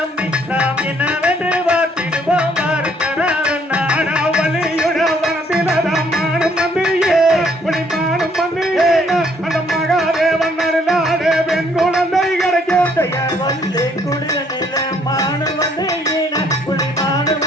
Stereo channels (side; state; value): both; normal; correlation 0.65